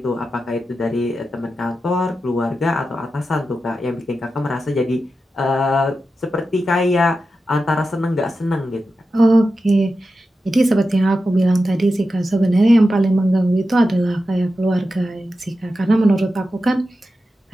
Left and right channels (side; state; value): both; normal; correlation 0.91